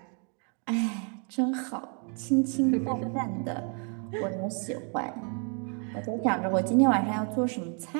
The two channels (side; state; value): left; quieter; 39.7 dB